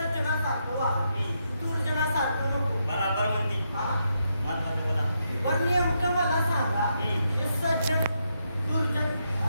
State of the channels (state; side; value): inverted; both; correlation -0.81